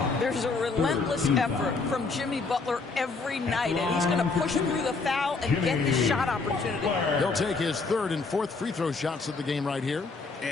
There's a relentless effort from Jimmy Butler every night, and he's going to push through the foul and get the shot opportunity. He'll take his 3rd and 4th free throw shots of the game right here.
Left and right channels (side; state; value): right; quieter; 4.2 dB